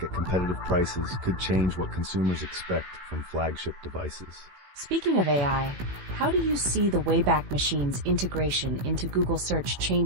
at competitive prices could change what consumers expect from flagship devices. Speaking of AI, how do you see the Wayback Machine's integration into Google Search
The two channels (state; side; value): late; left; 16 ms